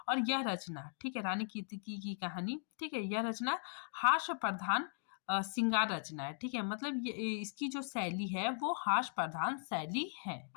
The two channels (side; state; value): right; silent; digital silence